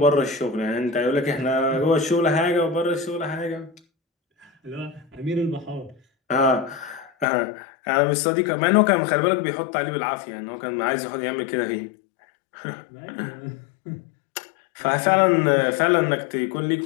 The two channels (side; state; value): right; drops out; at 7.2 s